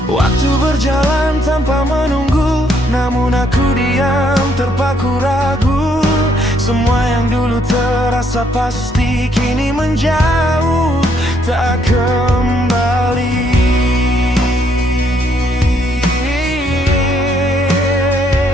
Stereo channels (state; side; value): normal; both; correlation 0.70